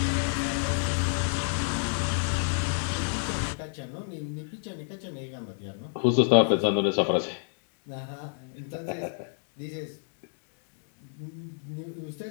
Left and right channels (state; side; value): silent; right; digital silence